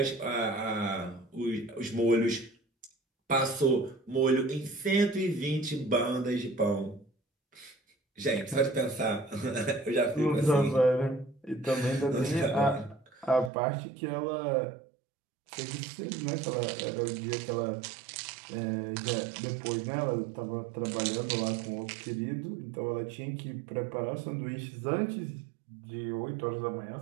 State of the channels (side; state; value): left; drops out; at 13.5 s